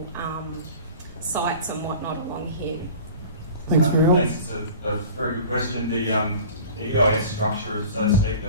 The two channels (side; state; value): both; inverted; correlation -0.41